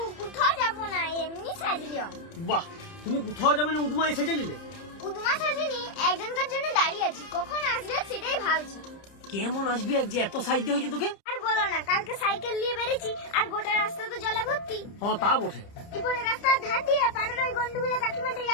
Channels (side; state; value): right; late; 30 ms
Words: কোথাও যাবো না, এমনি সাজলিও। বাহ, তুমি কোথাও যাবে না, উদুমায় সেজে নিলে? উদমা সাজিনি, একজনকার জন্য দাঁড়িয়ে আছি, কখন আসবে সেটাই ভাবছি। কেমন আসবি এক যে এত সাইজে হয়েছে তোকে? আর বলো না, কালকে সাইকেল নিয়ে বেরিয়েছি আর গোটা রাস্তা তো জলে ভর্তি। হ্যাঁ তা বটে। এরপরে রাস্তার ধার দিয়ে পাড়ার ওই গন্ডগুলো কাকিমাটা